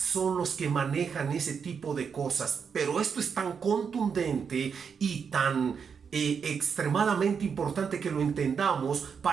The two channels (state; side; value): quieter; left; 6.4 dB